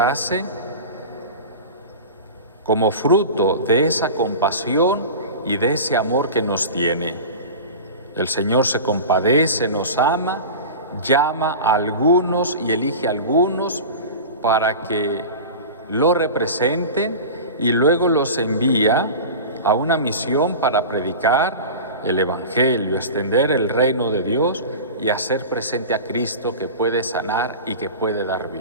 como fruto de esa compasión y de ese amor que nos tiene. El Señor se compadece, nos ama, llama a algunos y elige a algunos para que lo representen y luego los envía a una misión para predicar el Evangelio, extender el reino de Dios y hacer presente a Cristo, que puede sanar y que puede dar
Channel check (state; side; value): inverted; both; correlation -0.31